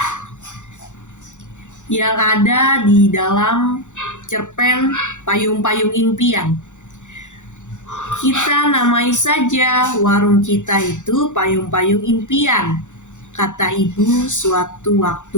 yang ada di dalam cerpen Payung-Payung Impian. Kita namai saja warung kita itu Payung-Payung Impian. kata ibu suatu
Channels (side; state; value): right; late; 0.85 ms